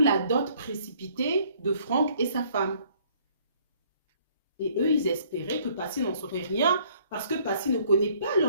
dot précipitée de Franck et sa femme. Et eux, ils espéraient que Passy n'en saurait rien, parce que Passy ne connaît pas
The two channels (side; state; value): both; inverted; correlation -0.61